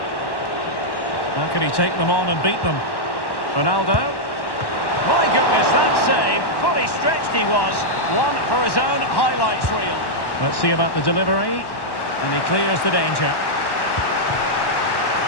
How can he take them on and beat them? Ronaldo. My goodness, that save. Fully stretched he was. One for his own highlights reel. Let's see about the delivery. And he clears the danger.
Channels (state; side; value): late; right; 1.1 ms